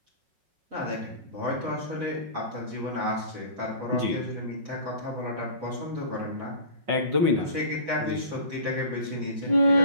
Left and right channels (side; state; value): left; late; 5.5 ms